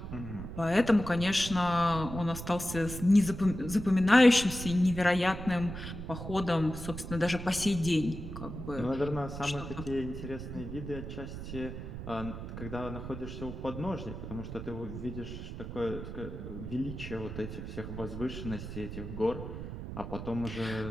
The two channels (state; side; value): noise; right; rumble, 8 dB below the sound